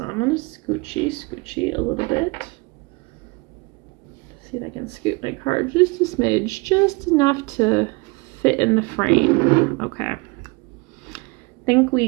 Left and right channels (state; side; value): quieter; left; 27.1 dB